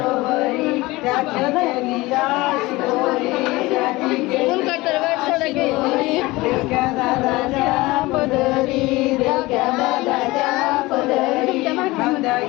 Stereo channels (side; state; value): right; quieter; 20.8 dB